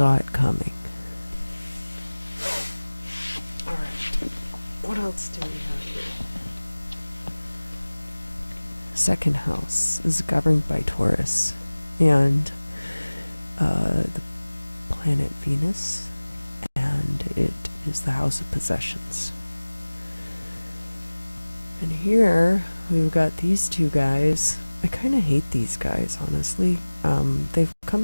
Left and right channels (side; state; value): both; inverted; correlation -1.00